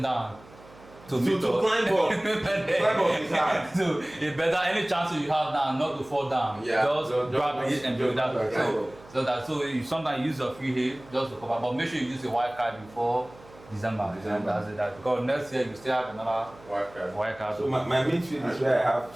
down. To climb up is hard. So it's better any chance you have now not to fall down. Just grab it and build that. So you sometimes use your free hit just to cover, but make sure you use a wild card before December. That's it. Because next year you still have another wild card. So my midfield is where I have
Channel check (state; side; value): noise; right; hum, 23 dB below the sound